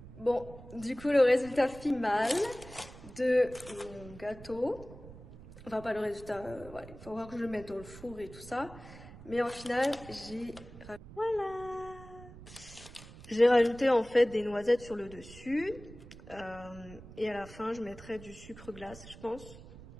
Bon, du coup, le résultat final de mon gâteau, enfin pas le résultat, ouais, il faut voir que je le mette dans le four et tout ça, mais en final, j'ai rajouté en fait des noisettes sur le dessus, et à la fin, je mettrai du sucre glace, je pense,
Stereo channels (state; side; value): noise; right; rumble, 17 dB below the sound